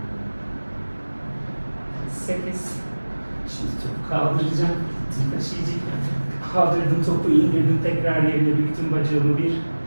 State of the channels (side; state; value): both; inverted; correlation -1.00